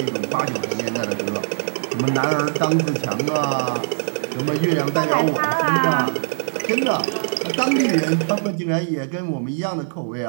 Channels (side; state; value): left; silent; 65 dB below the other